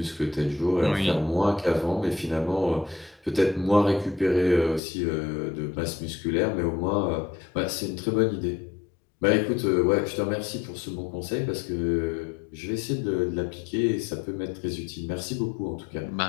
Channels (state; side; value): drops out; right; at 4.8 s